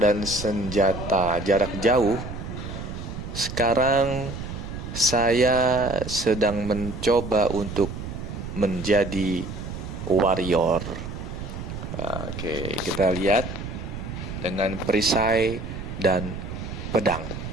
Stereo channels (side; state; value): right; noise; rumble, 8 dB below the sound